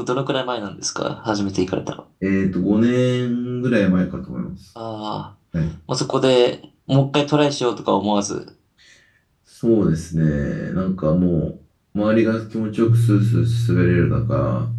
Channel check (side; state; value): both; identical; correlation 1.00